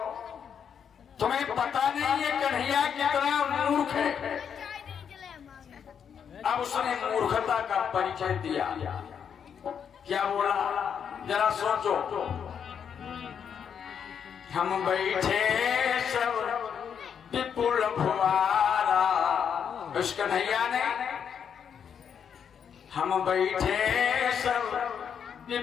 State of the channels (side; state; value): right; quieter; 7.6 dB